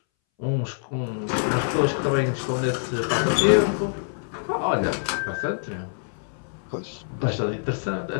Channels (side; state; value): right; silent; 61 dB below the other